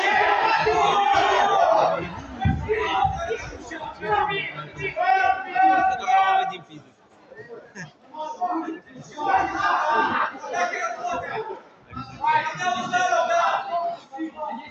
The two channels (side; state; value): both; identical; correlation 1.00